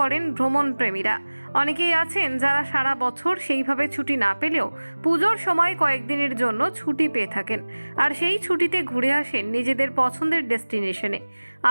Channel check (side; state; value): both; inverted; correlation -1.00